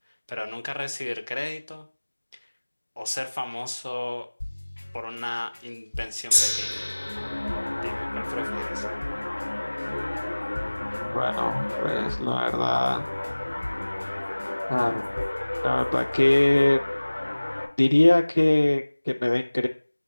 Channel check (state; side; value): inverted; both; correlation -1.00